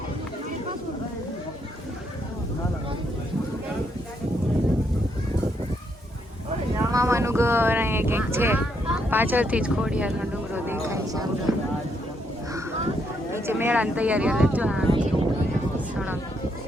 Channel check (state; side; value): normal; both; correlation 0.76